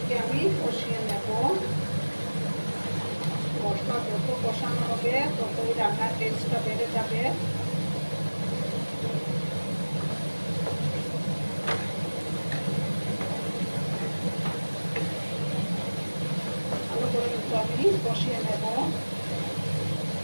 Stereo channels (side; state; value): both; inverted; correlation -1.00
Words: আমি কষিয়ে নেব। মশলা যত কষানো হবে ততই রান্নার টেস্টটা বেড়ে যাবে। ভালো করে কিন্তু আমি কষিয়ে নেব।